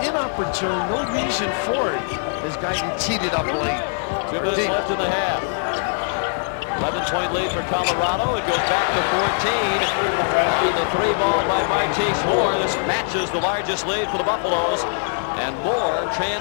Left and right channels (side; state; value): right; silent; 64 dB below the other